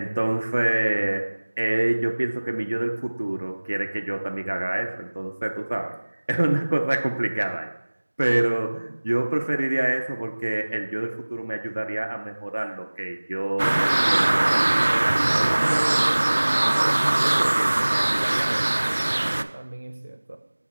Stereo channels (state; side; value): inverted; both; correlation -1.00